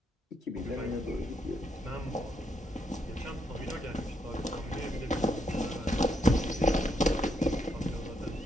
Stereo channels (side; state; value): both; normal; correlation 0.77